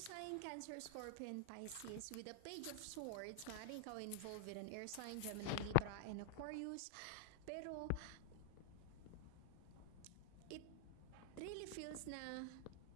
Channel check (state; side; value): different; both; correlation 0.00